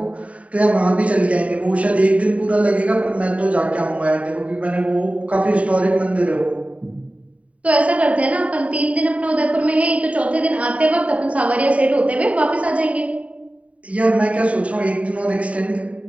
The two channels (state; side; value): late; left; 0.066 ms